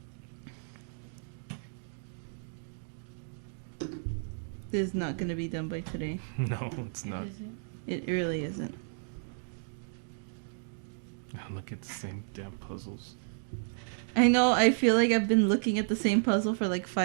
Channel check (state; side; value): silent; left; digital silence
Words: This is not going to be done by today. No, it's not. It really isn't. Look at the same damn puzzles. I know, I feel like I've been looking at the same puzzle for like